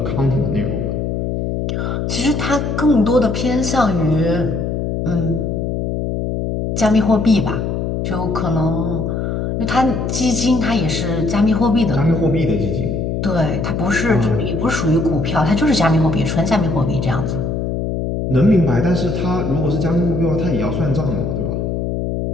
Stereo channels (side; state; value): left; noise; hum, 1 dB below the sound